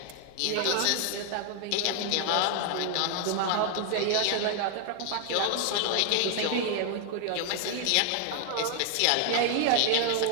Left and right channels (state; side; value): different; both; correlation 0.00